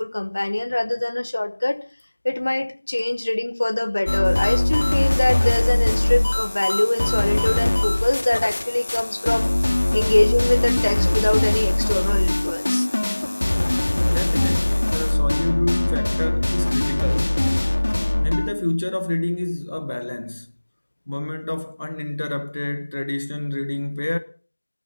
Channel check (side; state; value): both; inverted; correlation -1.00